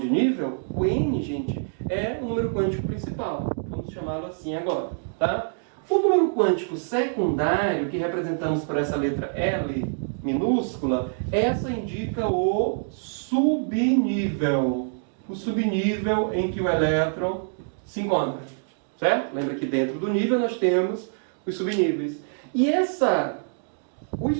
nível? O N, gente, é o número quântico principal. Vamos chamá-lo assim agora. Tá? O número quântico secundário, que representamos por essa letra L minúscula, essa indica o subnível. O subnível em que o elétron se encontra. Certo? Lembra que dentro do nível nós temos os subníveis. E os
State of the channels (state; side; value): silent; left; digital silence